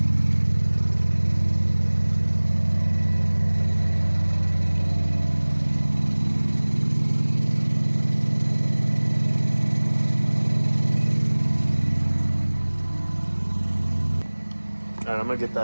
All right, I'm gonna get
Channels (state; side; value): inverted; both; correlation -1.00